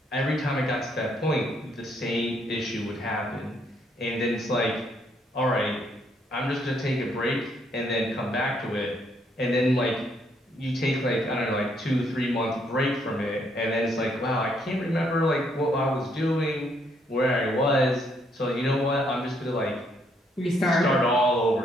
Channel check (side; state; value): both; normal; correlation 0.71